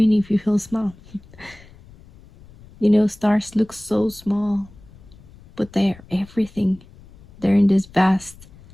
if you feel small. Stars look so small, but they're everything. They're in this vast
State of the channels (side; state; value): left; noise; rumble, 23 dB below the sound